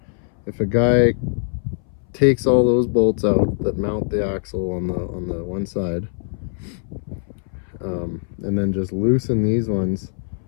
if a guy takes all those bolts out that mount the axle on the one side, and then just loosen these ones,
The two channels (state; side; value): silent; right; 62 dB below the other